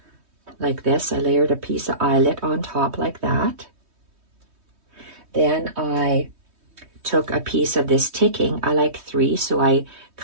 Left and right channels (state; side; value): late; left; 3.2 ms